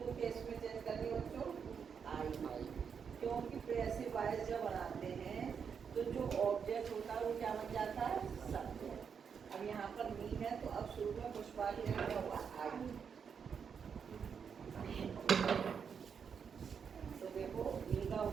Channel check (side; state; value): left; quieter; 6.7 dB